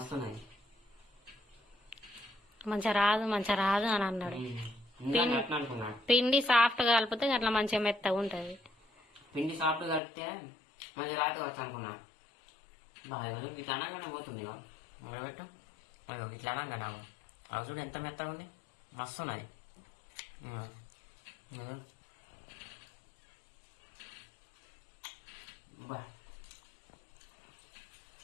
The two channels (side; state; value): right; drops out; at 10.0 s